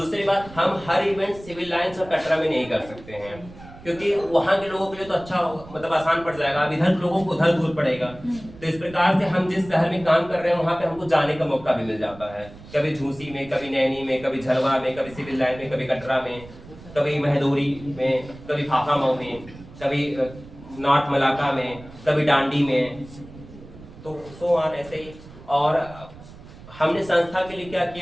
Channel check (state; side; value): noise; right; rumble, 18 dB below the sound